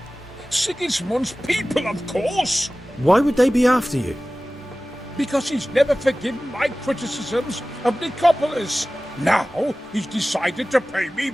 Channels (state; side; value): normal; both; correlation 0.97